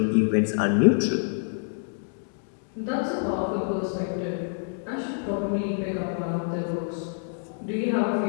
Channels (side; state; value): right; silent; digital silence